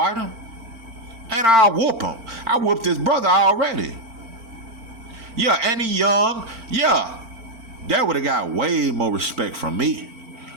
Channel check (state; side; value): late; left; 4.4 ms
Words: him. And I'll whoop him. I whooped his brother already. Yeah, and he young. Yeah. That would have got way more respect from me